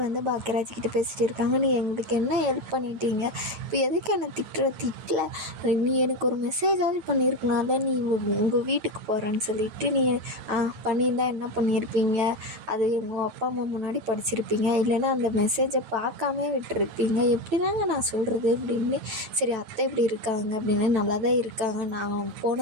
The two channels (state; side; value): late; left; 9.1 ms